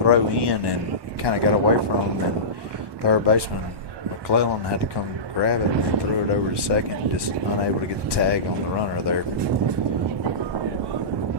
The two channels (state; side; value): late; left; 1.2 ms